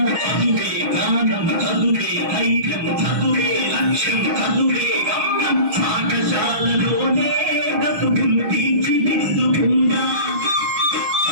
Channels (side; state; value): left; late; 6.3 ms